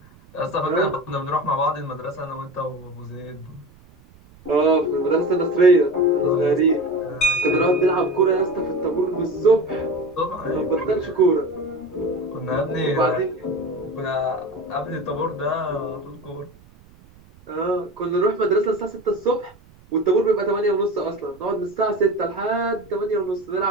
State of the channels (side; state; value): right; noise; rumble, 26 dB below the sound